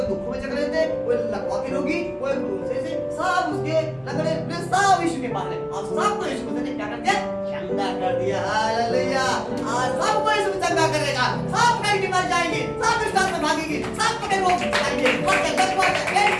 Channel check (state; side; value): identical; both; correlation 1.00